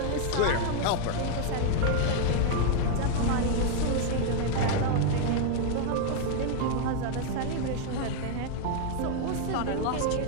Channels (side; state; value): both; different; correlation 0.00